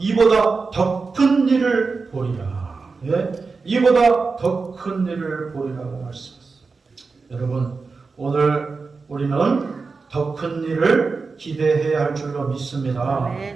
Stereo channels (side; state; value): left; quieter; 4.4 dB